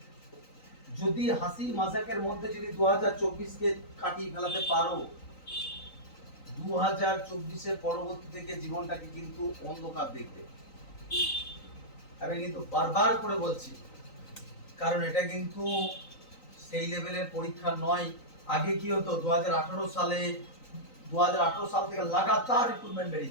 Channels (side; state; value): right; late; 3.9 ms